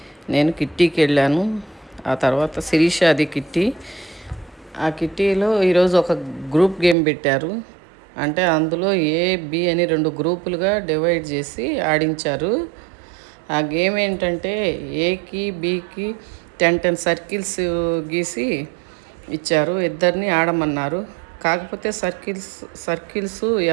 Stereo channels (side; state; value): left; drops out; at 7.0 s